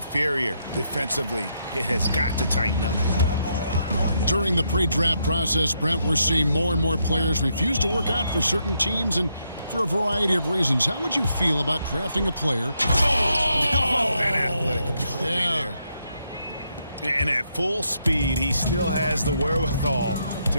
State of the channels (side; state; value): both; inverted; correlation -0.78